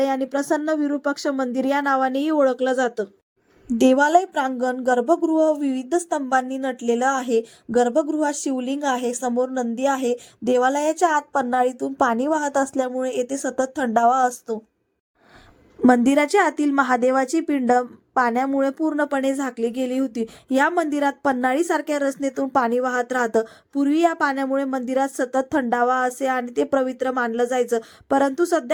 आणि प्रसन्न विरूपाक्ष मंदिर या नावानेही ओळखलं जातं. देवालय प्रांगण गर्भगृह विविध स्तंभांनी नटलेलं आहे. गर्भगृहात शिवलिंग आहे, समोर नंदी आहे. देवालयाच्या आत पन्हाळीतून पाणी वाहत असल्यामुळे येथे सतत थंडावा असतो. मंदिराच्या आतील महादेवाची पिंड पाण्यामुळे पूर्णपणे झाकली गेली होती. या मंदिरात पन्हाळीसारख्या रचनेतून पाणी वाहत राहतं. पूर्वी या पाण्यामुळे मंदिरात सतत थंडावा असे आणि ते पवित्र मानलं जायचं. परंतु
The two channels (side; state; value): both; identical; correlation 1.00